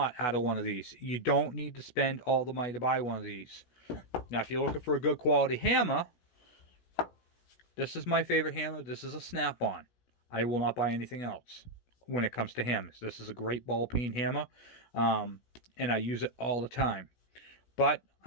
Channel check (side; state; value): right; late; 16 ms